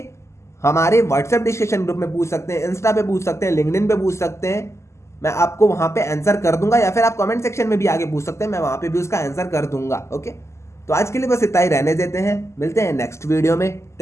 हमारे व्हाट्सएप डिस्कशन ग्रुप में पूछ सकते हैं, इंस्टा पे पूछ सकते हैं, लिंक्डइन पे पूछ सकते हैं, मैं आपको वहां पे आंसर कर दूंगा। या फिर आप कमेंट सेक्शन में भी आगे पूछ सकते हैं, मैं वहां पे भी उसका आंसर कर दूंगा। ओके, तो आज के लिए बस इतना ही रहने देते हैं, मिलते हैं नेक्स्ट वीडियो में।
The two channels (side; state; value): right; late; 0.13 ms